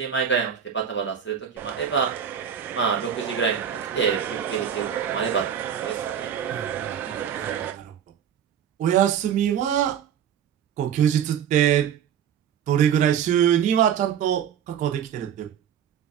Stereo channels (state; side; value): quieter; left; 8.8 dB